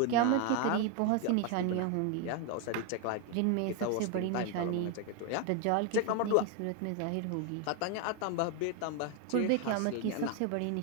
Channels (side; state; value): both; different; correlation 0.01